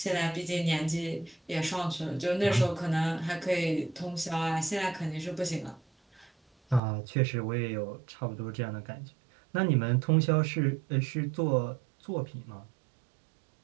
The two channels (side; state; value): left; drops out; at 6.8 s